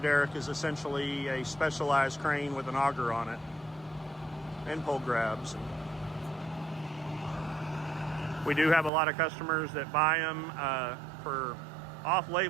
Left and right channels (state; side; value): drops out; left; at 8.9 s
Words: is essentially a specialized crane with an auger on it and pole grabs. We do have a lot of customers that buy them for